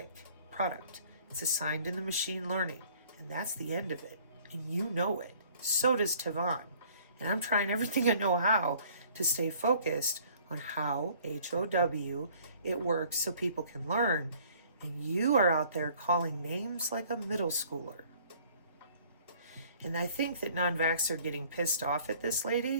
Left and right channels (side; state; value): both; inverted; correlation -0.55